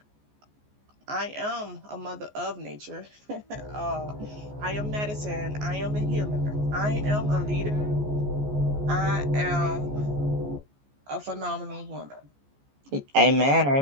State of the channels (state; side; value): late; left; 14 ms